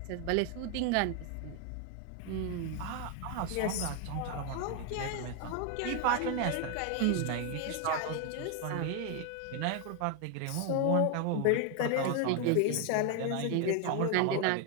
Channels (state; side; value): different; both; correlation 0.01